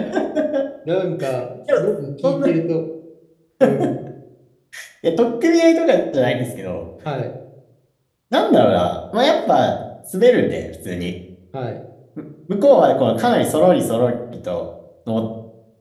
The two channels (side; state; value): both; identical; correlation 1.00